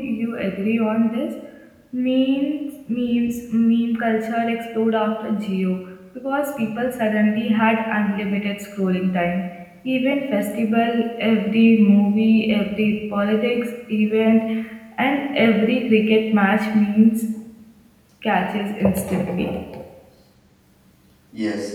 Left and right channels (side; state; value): both; identical; correlation 1.00